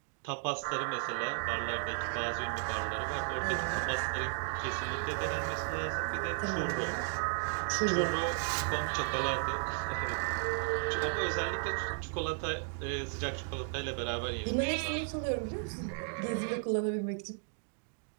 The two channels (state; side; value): silent; left; 55 dB below the other